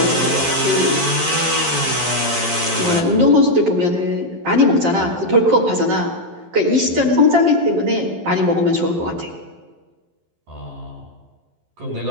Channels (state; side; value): late; left; 11 ms